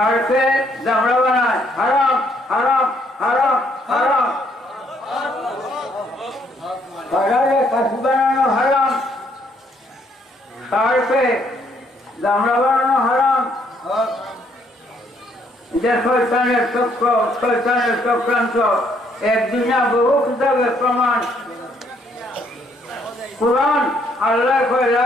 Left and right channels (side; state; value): both; normal; correlation 0.69